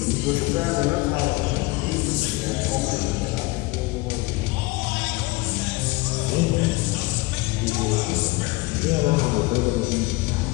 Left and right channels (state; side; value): quieter; right; 22.3 dB